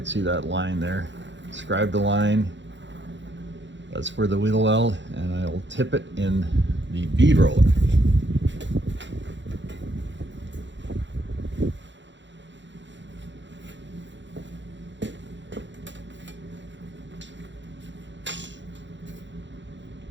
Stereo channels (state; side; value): late; left; 0.53 ms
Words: see that line there. Describe the line. That's for the wheel well, and I'll tip it in the bead roller.